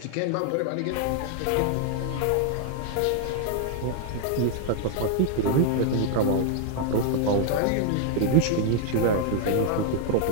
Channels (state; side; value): different; both; correlation 0.00